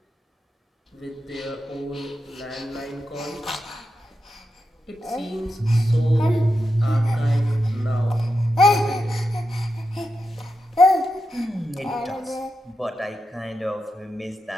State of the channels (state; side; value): normal; both; correlation 0.88